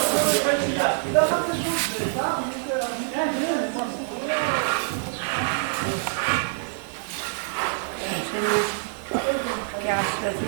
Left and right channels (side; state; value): left; silent; 61 dB below the other